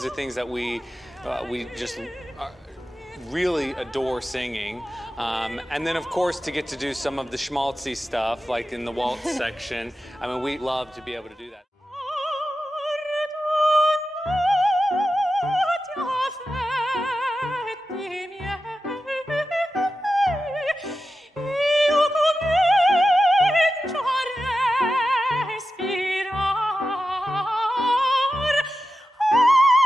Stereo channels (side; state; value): both; normal; correlation 0.91